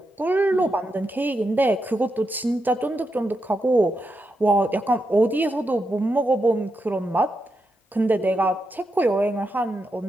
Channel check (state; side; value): normal; both; correlation 0.85